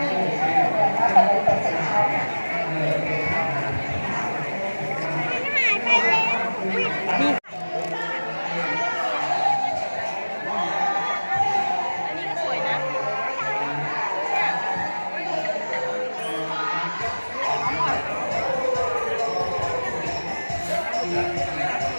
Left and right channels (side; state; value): both; inverted; correlation -1.00